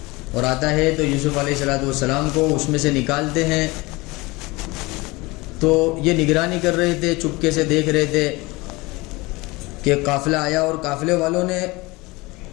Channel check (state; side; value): quieter; right; 23.2 dB